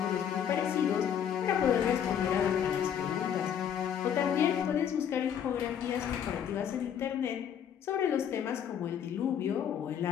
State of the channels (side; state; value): right; quieter; 8.8 dB